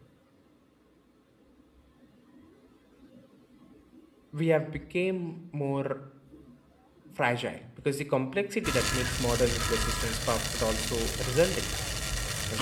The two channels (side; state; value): both; identical; correlation 1.00